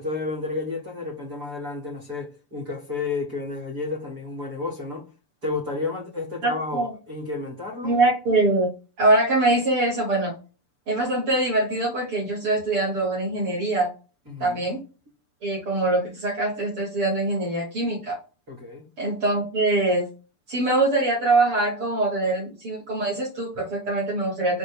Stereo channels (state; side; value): late; left; 6.8 ms